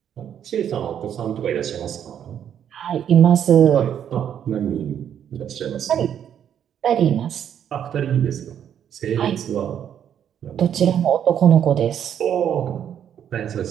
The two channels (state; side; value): quieter; left; 9.3 dB